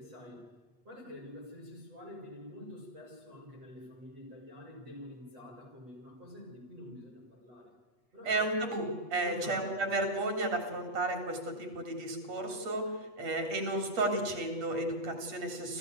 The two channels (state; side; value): late; left; 8.3 ms